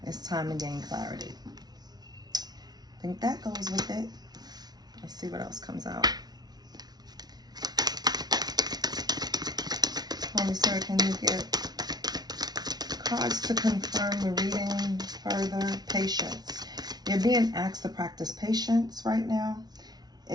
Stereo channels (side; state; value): left; late; 0.19 ms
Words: It's time to gain clarity. I think that goes with it. Let's see what else comes out. Holy Spirit, can you get cards to confirm the reading further? Patience. You're being asked to practice patience right now.